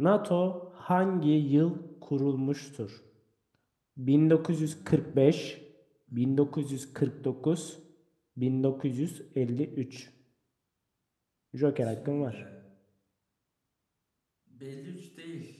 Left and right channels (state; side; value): identical; both; correlation 1.00